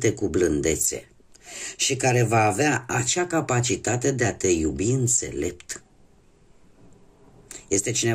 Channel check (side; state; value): both; identical; correlation 1.00